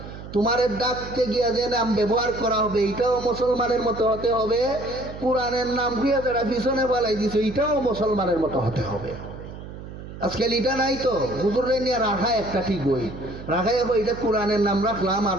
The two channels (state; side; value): noise; right; hum, 12 dB below the sound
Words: তোমার ডাকতে গিয়া যে নাম ব্যবহার করা হবে এটাও মুসলমানের মতো হতে হবে, কোরআনের নাম গিয়া যারা পিছনে ফালাই দিছে এটাও মুসলমানের মতো হতে হবে। আজকাল এটা নাই তো, হুজুরে নিয়ে রাখা একটা ঠিক বই রাখাই এটা কোরআনের নাম রাখলাম, আর